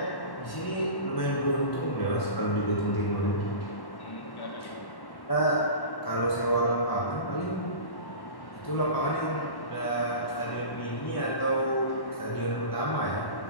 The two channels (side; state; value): right; late; 1.1 ms